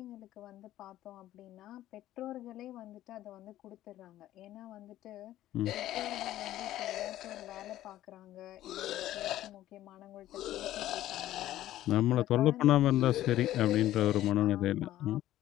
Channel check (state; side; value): quieter; right; 13.8 dB